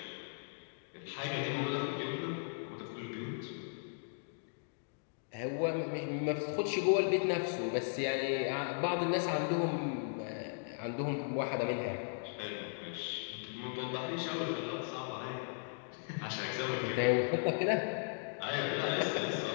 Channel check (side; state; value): right; silent; digital silence